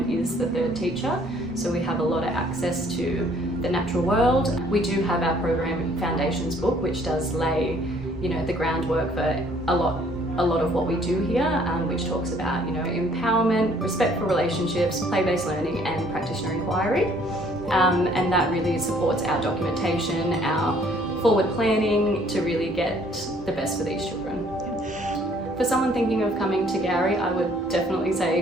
is the third teacher, so we have a lot of access to the natural world. We do have our program foundations book, which does lay the groundwork for a lot of what we do here, which talks about empowerment, respect for relationships, play-based learning and practitioner inquiry, and that really supports our documentation, our forward planning to really get the best for these children. For someone thinking of coming to Gowrie, I would definitely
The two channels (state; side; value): normal; both; correlation 0.60